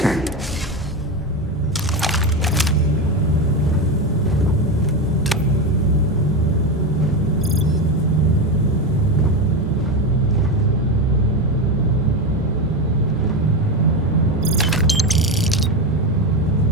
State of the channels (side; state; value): both; normal; correlation 0.15